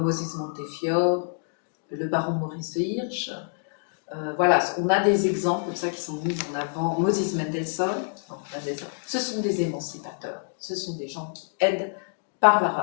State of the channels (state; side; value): silent; right; digital silence